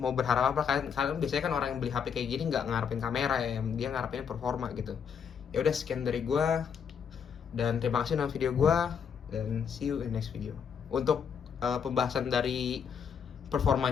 berharap apa? Kalian biasanya kan orang yang beli HP kayak gini nggak ngarepin kamera ya, dia ngarepin performa gitu. Ya udah, sekian dari gua, dan terima kasih nonton video gua, dan see you in next video. Untuk pembahasan dari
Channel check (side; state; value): right; quieter; 7.1 dB